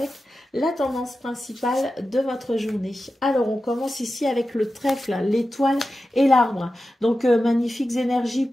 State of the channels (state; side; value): normal; both; correlation 0.92